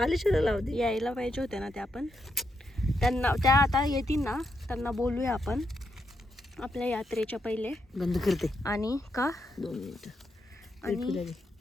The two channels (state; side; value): normal; both; correlation 0.81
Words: लावते. यायला पाहिजे होत्या ना त्या पण. त्यांना त्या आता येतील ना, त्यांना बोलूया आपण आपल्या यात्रेच्या पहिले. बंद करते आणि का 2 मिनिटं. आणि